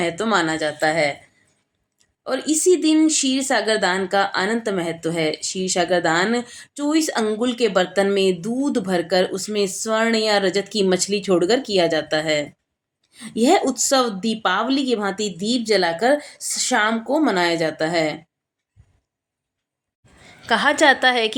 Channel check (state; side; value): identical; both; correlation 1.00